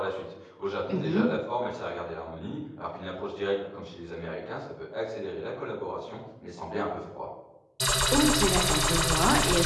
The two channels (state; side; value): identical; both; correlation 1.00